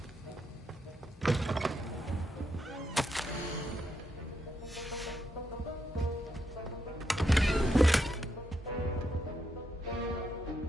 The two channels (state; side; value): normal; both; correlation 0.81